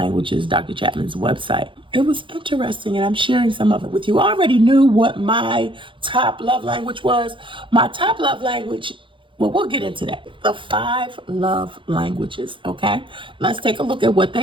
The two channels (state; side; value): late; left; 0.24 ms